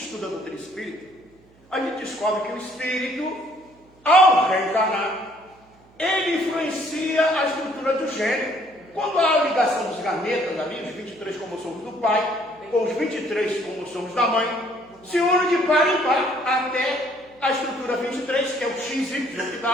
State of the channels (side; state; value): right; noise; hum, 29 dB below the sound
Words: a doutrina espírita, a gente descobre que o espírito, ao reencarnar, ele influencia a estrutura do gênero. Quando há a ligação dos gametas ali, os 23 cromossomos do pai, com os 23 cromossomos da mãe, se unem de par em par até a estrutura 23, que é o XY, que